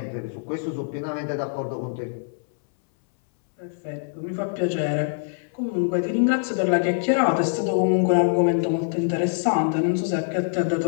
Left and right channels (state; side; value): silent; right; 63 dB below the other